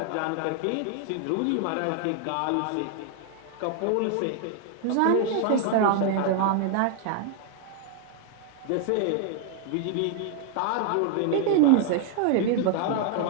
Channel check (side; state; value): both; different; correlation 0.00